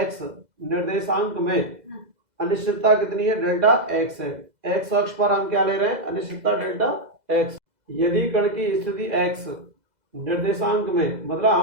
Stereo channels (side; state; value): left; late; 2.0 ms